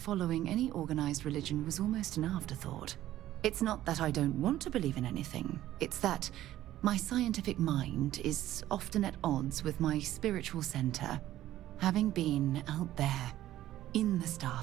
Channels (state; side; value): quieter; left; 13.8 dB